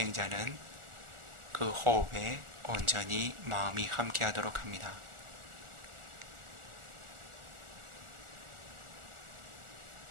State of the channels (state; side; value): late; left; 1.4 ms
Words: 그 호흡에 온전히 마음이 함께하도록 합니다.